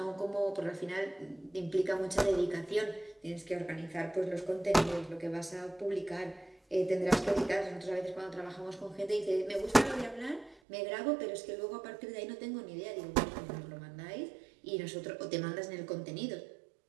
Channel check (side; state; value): left; drops out; at 10.6 s